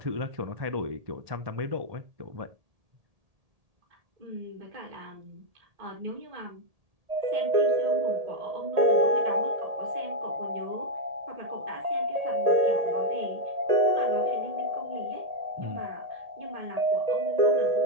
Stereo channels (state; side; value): late; left; 1.8 ms